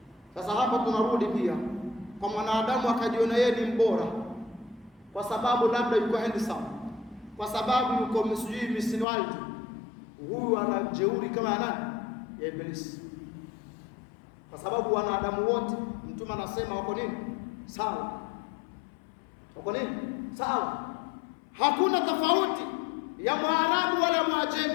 Sasa hapo tunarudi pia kwa mwanadamu akajiona yeye ni mbora kwa sababu labda yuko handsome, kwa sababu yuko msujui misiniwalti, huyu ana jeuri kama nani? Ya Ibilisi. Kwa sababu wanadamu wote Mtume anasema wako nini? Sawa. Wako nini? Sawa. Hakuna tofauti ya Mwarabu wala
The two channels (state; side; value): drops out; right; at 9.1 s